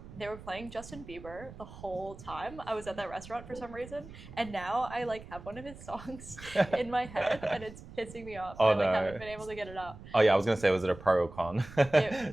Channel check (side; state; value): right; noise; rumble, 16 dB below the sound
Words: they were playing Justin Bieber the whole time I was at that restaurant for some reason, and now I like have one of his songs in my head, and it's pissing me off. Oh, I like no. haven't been able to get it out. Oh yeah, I was gonna say, was it a pro or con to be